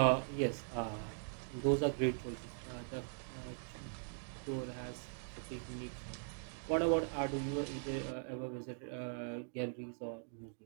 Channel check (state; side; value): silent; left; digital silence